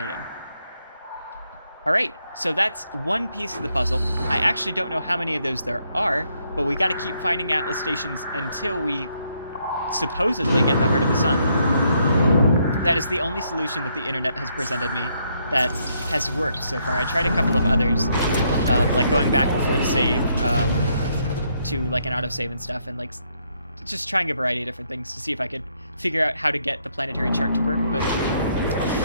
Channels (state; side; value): inverted; both; correlation -0.74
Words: Alright, so that's one piece of the puzzle. I actually don't know how many of those there are, but we gotta keep finding Atlas stations until we supposedly get the Heart of the Sun. That is the only solution that the internet has presented me that has worked so far. I tried a couple of others, like going back before the save, to like an autosave and stuff, and like just trying a variety of different things to see if I could figure out how to get the planetary chart to work, but